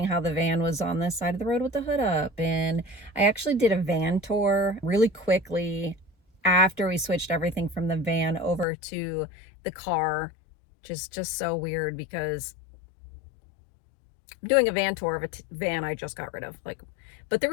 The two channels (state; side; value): drops out; right; at 8.7 s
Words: how the van was on this side of the road with the hood up. And I actually did a van tour really quickly after we switched everything from the van over to the car. Just so weird because I'm doing a van tour of a van I just got rid of. But the